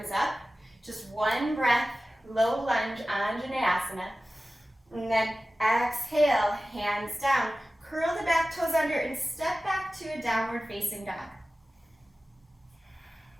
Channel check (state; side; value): normal; both; correlation 0.96